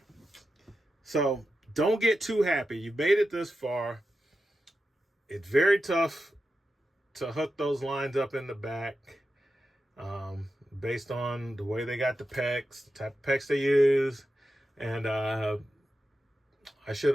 so don't get too happy. You made it this far. It's very tough to hook those lines up in the back, based on the way they got the pegs, the type of pegs they use. And I should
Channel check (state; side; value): normal; both; correlation 0.90